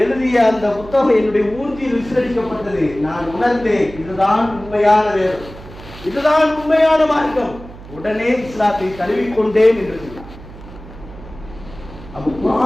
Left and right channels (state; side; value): noise; right; hum, 17 dB below the sound